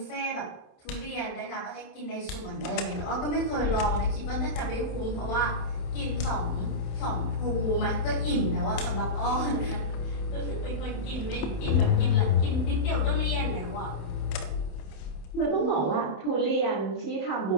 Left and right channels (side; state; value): right; late; 27 ms